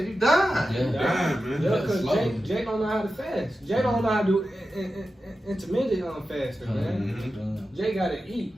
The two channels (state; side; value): normal; both; correlation 0.92